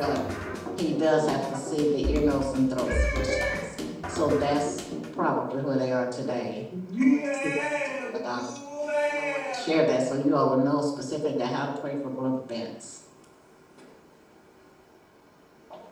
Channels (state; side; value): identical; both; correlation 1.00